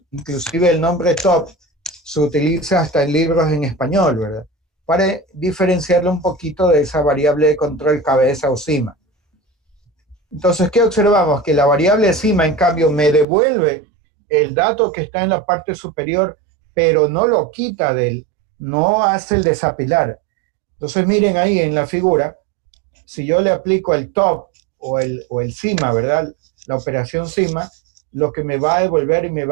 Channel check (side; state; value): left; drops out; at 13.2 s